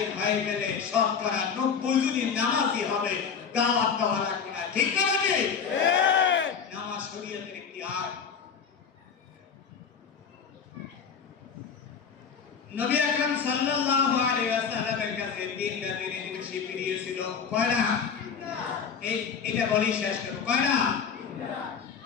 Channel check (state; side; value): quieter; right; 6.6 dB